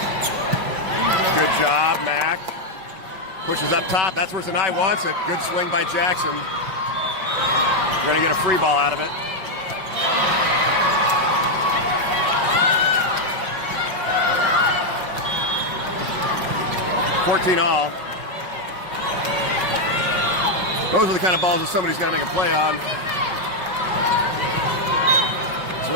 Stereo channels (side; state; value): left; late; 5.5 ms